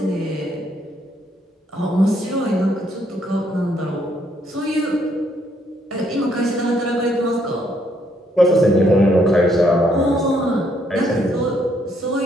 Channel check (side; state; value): both; normal; correlation 0.71